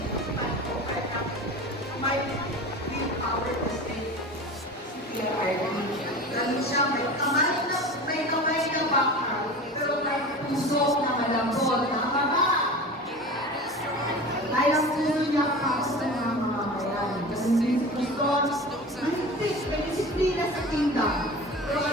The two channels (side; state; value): both; normal; correlation 0.34